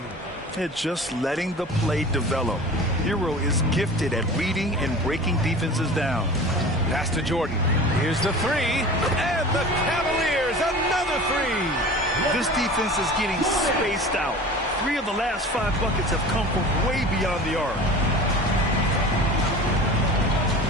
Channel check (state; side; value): normal; both; correlation 0.38